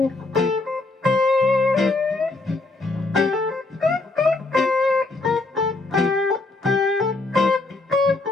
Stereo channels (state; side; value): quieter; right; 3.3 dB